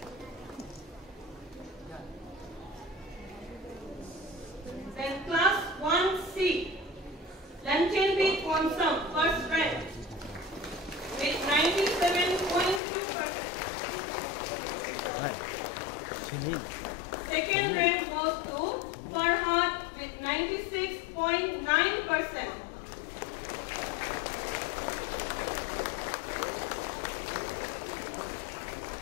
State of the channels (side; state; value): right; drops out; at 12.8 s